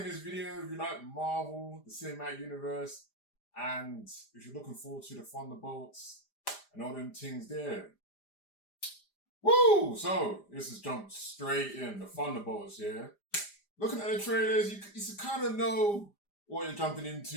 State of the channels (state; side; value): late; right; 5.0 ms